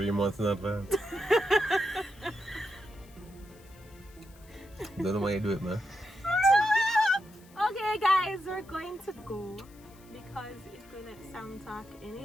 months in advance. Don't know why you do it, man. Okay, guys, we're going to go because if we let Sam talk any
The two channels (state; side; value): noise; left; hiss, 26 dB below the sound